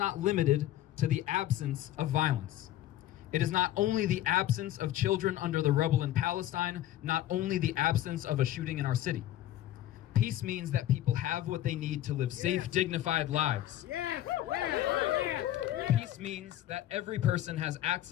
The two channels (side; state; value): right; quieter; 13.4 dB